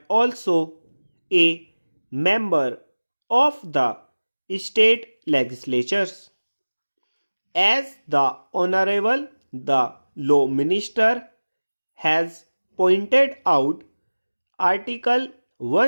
also a member of the state legislatures. As the Honorable the Law Minister has pointed out, Article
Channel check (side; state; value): both; inverted; correlation -1.00